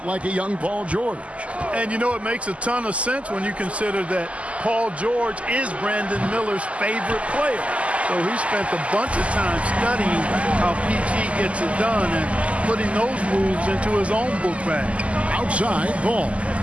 like a young Paul George. And you know, it makes a ton of sense when you consider that Paul George is Brandon Miller's favorite player. So he spent a bunch of time studying how PG gets it done and putting those moves into his own book bag. Outside, Ball.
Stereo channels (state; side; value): late; left; 0.063 ms